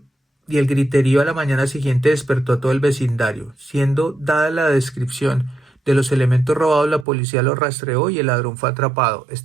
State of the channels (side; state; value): left; drops out; at 7.1 s